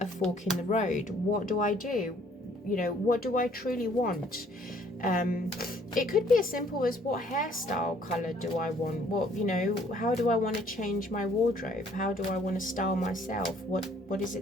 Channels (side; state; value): both; normal; correlation 0.61